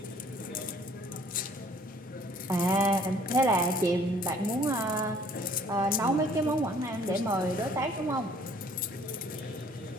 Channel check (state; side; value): normal; both; correlation 0.57